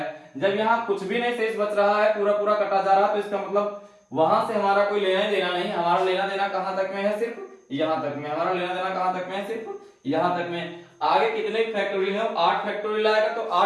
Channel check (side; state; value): both; identical; correlation 1.00